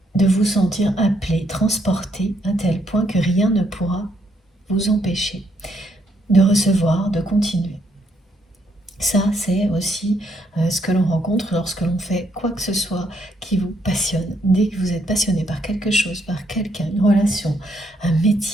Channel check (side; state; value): both; normal; correlation 0.73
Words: de vous sentir appelé, transporté à tel point que rien ne pourra vous empêcher de recevoir, de continuer. Ça, c'est aussi ce que l'on rencontre lorsque l'on fait quoi que ce soit qui vous passionne. Dès que vous êtes passionné par quelque chose, par quelqu'un, une relation, un